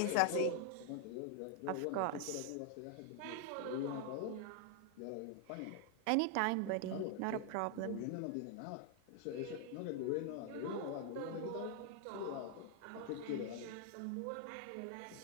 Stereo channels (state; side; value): different; both; correlation 0.00